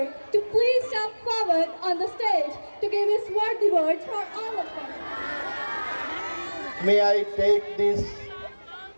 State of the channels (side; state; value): both; inverted; correlation -1.00